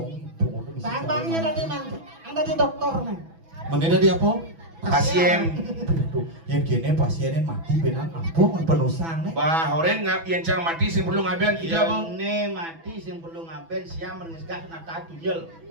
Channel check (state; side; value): late; left; 6.1 ms